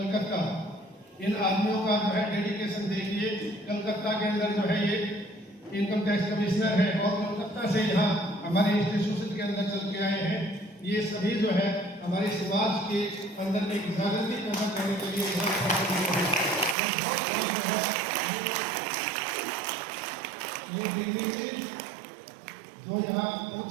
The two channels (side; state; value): left; drops out; at 16.8 s